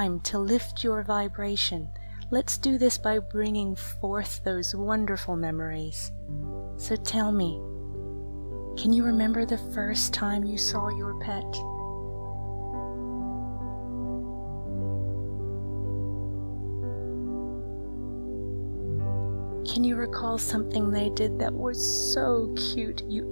to lift your vibration. Let's do this by bringing forth those wonderful memories. So tell me, can you remember the first time you saw your pet? Can you recall something they did that was so cute you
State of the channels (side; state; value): both; inverted; correlation -1.00